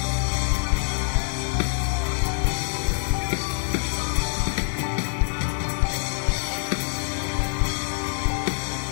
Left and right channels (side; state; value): right; silent; digital silence